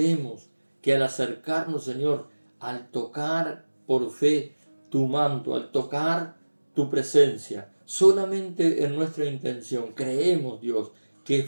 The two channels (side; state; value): both; inverted; correlation -1.00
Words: que al acercarnos, Señor, al tocar por fe tu manto, al tocar tu presencia, solamente en nuestra intención creemos, Dios, que